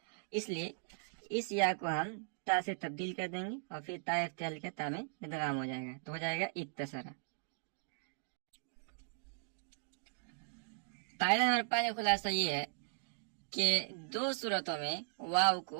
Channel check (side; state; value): left; silent; digital silence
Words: اس لیے اس یا کو ہم تا سے تبدیل کر دیں گے اور پھر تا افتعال کے تا میں ادغام ہو جائے گا تو ہو جائے گا اتسرا. قاعدہ نمبر 5 کا خلاصہ یہ ہے کہ دو صورتوں میں واو